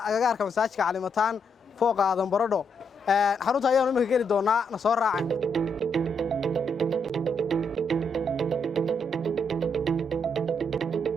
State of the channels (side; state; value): both; normal; correlation 0.77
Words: agagaarka masaajidka Calimataan fooqa Aadan Baradho xarunta ayaan imika geli doonaa na soo raacay